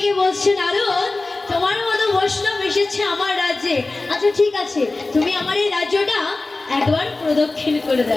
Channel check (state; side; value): quieter; right; 3.3 dB